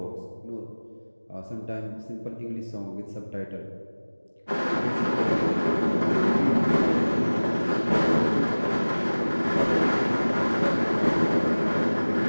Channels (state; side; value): inverted; both; correlation -1.00